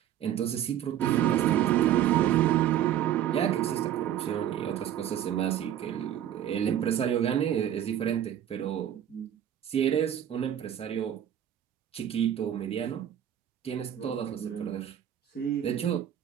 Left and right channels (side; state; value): left; quieter; 10.7 dB